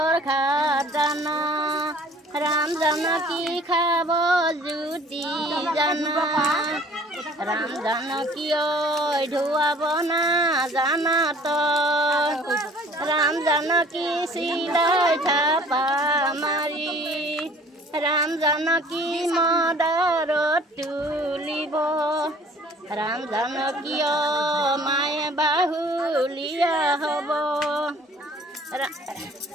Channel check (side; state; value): both; normal; correlation 0.52